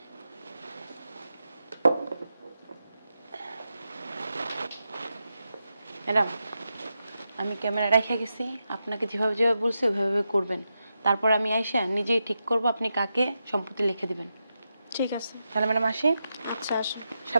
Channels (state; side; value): inverted; both; correlation -0.88